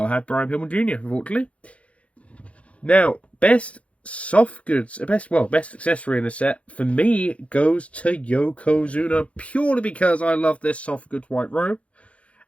to have Brian Pilman Jr., unfortunately. Now, best soft goods, best accessory in the set, for me, goes to Yokozuna, purely because I love this soft goods white robe,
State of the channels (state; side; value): late; right; 0.063 ms